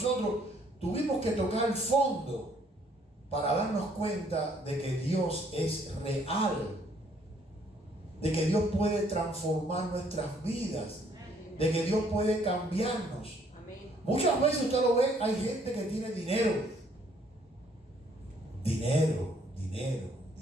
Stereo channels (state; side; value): normal; both; correlation 0.64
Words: tuvimos que tocar el fondo para darnos cuenta de que Dios es real, de que Dios puede transformar nuestras vidas, de que Dios puede cambiarnos. Muchas veces usted lo ve, hay gente que tiene dinero,